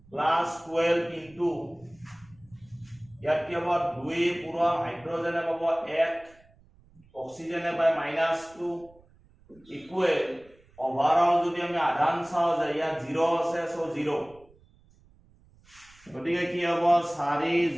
প্লাস 12 ইনটু ইয়াত কি হ'ব 2 পূৰণ হাইড্ৰোজেনে পাব 1 অক্সিজেনে পায় -2 ইকুৱেল ওভাৰঅল যদি আমি আধান চাও যে ইয়াত 0 আছে সো 0 গতিকে কি হ'ব 4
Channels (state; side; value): noise; right; rumble, 29 dB below the sound